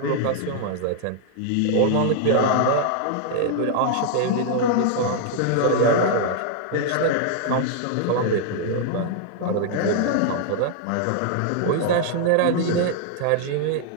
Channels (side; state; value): both; different; correlation 0.00